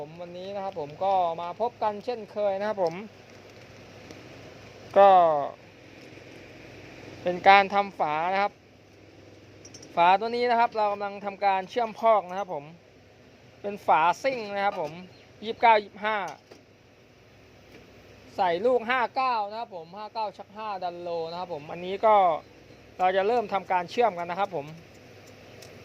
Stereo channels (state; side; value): identical; both; correlation 1.00